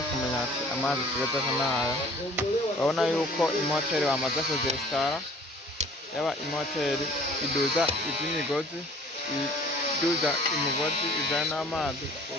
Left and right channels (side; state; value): both; normal; correlation 0.51